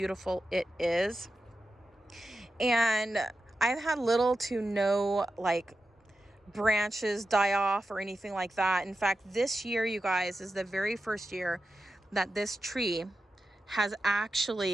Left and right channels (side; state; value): both; normal; correlation 0.91